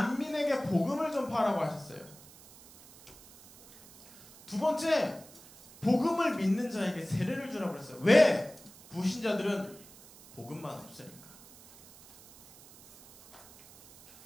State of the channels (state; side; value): noise; right; hiss, 22 dB below the sound